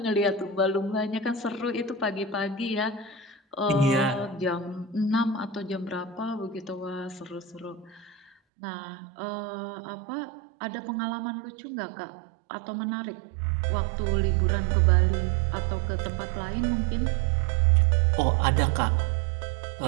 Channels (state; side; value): drops out; left; at 8.3 s